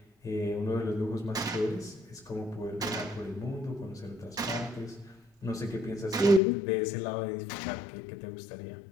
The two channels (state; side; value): drops out; right; at 6.4 s